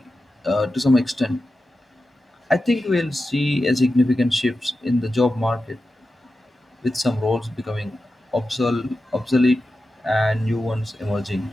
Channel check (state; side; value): normal; both; correlation 0.92